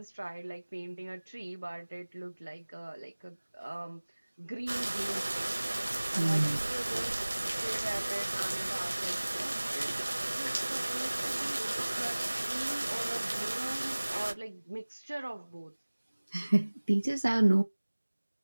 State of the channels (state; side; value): inverted; both; correlation -1.00